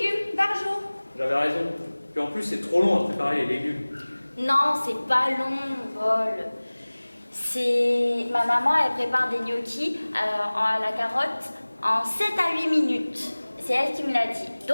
par jour. J'avais raison. Puis en plus, c'est trop long à préparer les légumes. Non, c'est pas long, Paul. C'est... Ma maman, elle prépare des gnocchis à la carotte en 7 à 8 minutes. C'est elle qui me l'a dit.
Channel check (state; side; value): inverted; both; correlation -1.00